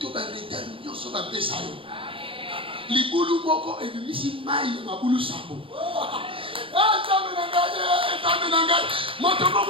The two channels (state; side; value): late; left; 0.26 ms